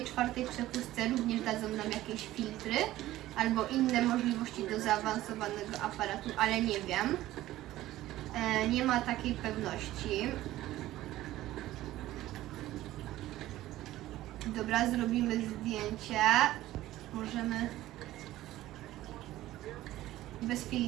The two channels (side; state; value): left; quieter; 15.4 dB